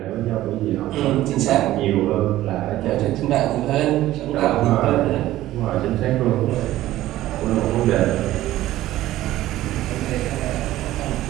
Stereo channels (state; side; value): quieter; left; 15.0 dB